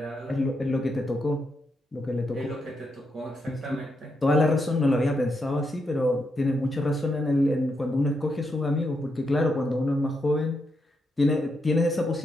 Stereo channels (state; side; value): normal; both; correlation 0.82